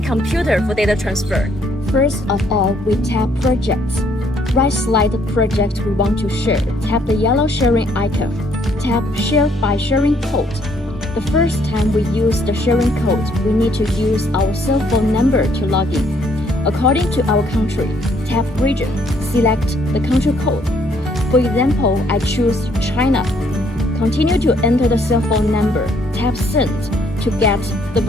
computer for data transfer. First of all, we tap Projects. Right-select the project we want to share. Tap the yellow sharing icon. Tap Share by Sharing Code. The first time we use the sharing code, we need to use our cell phone number to log in. According to our country, tap Region, select the country code. For example, I choose China. Continue to enter the cell phone number. Tap Send to get the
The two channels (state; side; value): normal; both; correlation 0.67